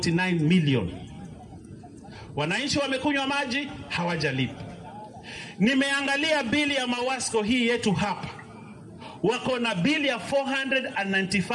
million. Wananchi wamekunywa maji, hawajalipa. Nimeangalia bili ya Mawasco hii yetu hapa, wako na bili ya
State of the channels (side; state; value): both; identical; correlation 1.00